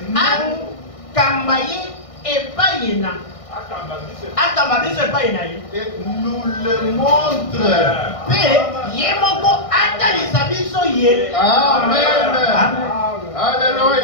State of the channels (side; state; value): right; late; 1.6 ms